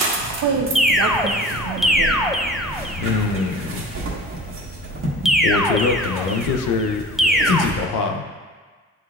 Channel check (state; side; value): normal; both; correlation 0.40